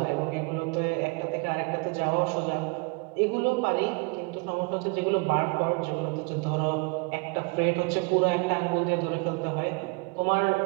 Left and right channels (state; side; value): quieter; left; 30.4 dB